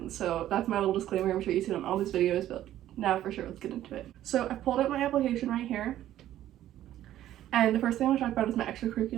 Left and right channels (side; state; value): left; quieter; 12.8 dB